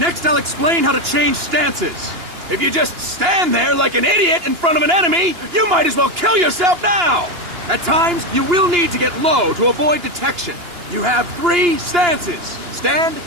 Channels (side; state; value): left; late; 2.9 ms